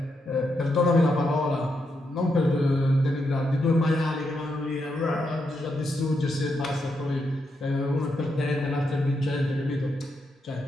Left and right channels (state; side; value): normal; both; correlation 0.82